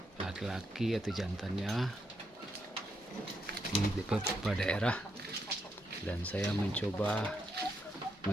laki-laki atau jantannya di beberapa daerah, dan saya mencoba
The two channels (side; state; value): both; normal; correlation 0.80